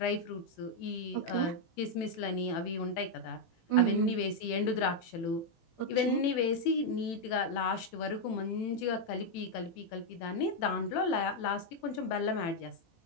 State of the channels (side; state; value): right; late; 18 ms